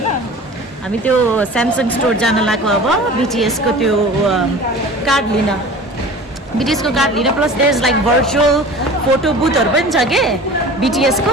हामी त्यो Samsung store जान लाग्यो अब BTS को त्यो card लिन BTS को card लिन plus there's like virtual photo booth हरु पनि छ के BTS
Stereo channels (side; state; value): both; normal; correlation 0.40